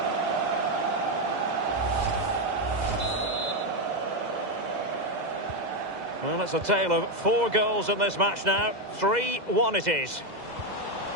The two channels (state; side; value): late; left; 2.0 ms